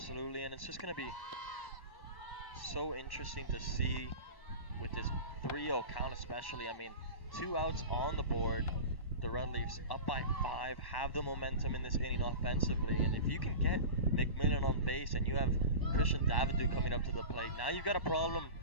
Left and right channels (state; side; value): late; right; 1.1 ms